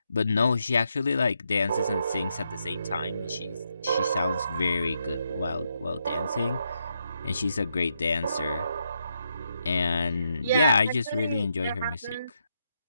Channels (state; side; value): inverted; both; correlation -0.80